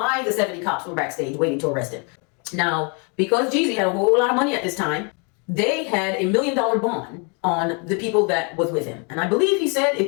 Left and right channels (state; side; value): quieter; right; 35.6 dB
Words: the 70 cops were backstage waiting to arrest him. Now, because JEEZY had a whole lot of money at this time, they had $1 million bond on the people that was with him. And I believe he said